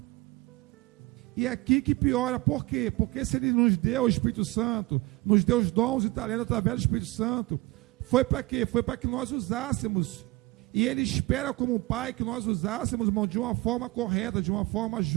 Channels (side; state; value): left; quieter; 21.6 dB